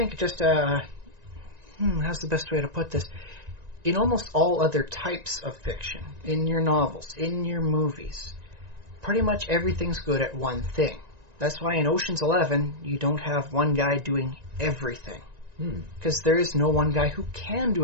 just how's the best way to put this? In almost all other types of fiction, in your novels, in your movies, pretty much everything's good at one thing. That's why in Ocean's 11, you don't have one guy doing everything. Because there is no one guy who can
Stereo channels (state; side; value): late; left; 1.9 ms